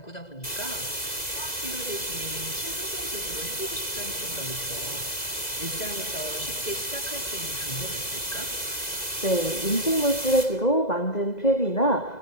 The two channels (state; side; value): late; right; 2.0 ms